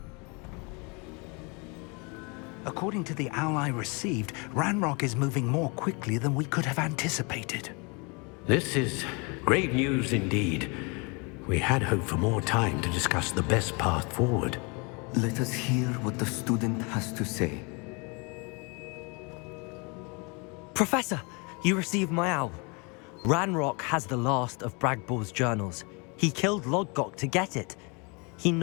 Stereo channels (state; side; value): quieter; right; 31.1 dB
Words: According to the owl I received, Ranrock is moving more quickly than we could have anticipated. This is great news indeed. We had hoped for more time to discuss the best path forward. Let us hear what the student has to say. Professor, you received my owl. Ranrock has the last of Bragbor's journals. He killed Lodgok to get it. He